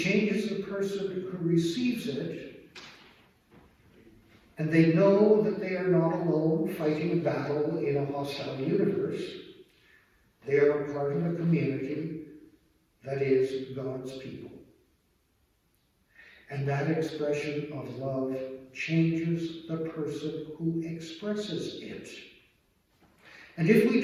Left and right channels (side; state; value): both; identical; correlation 1.00